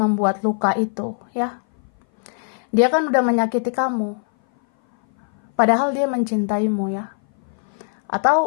membuat luka itu, ya. Dia kan udah menyakiti kamu, padahal dia mencintaimu, ya.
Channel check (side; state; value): right; silent; 59 dB below the other